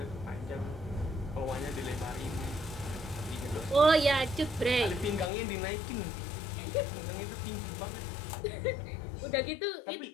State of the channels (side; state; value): right; drops out; at 5.3 s